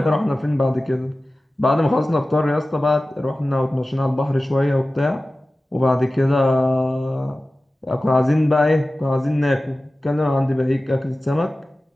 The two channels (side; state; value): both; normal; correlation 0.96